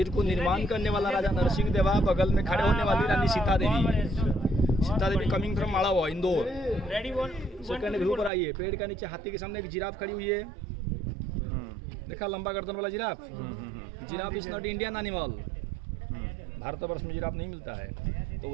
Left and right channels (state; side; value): drops out; left; at 8.3 s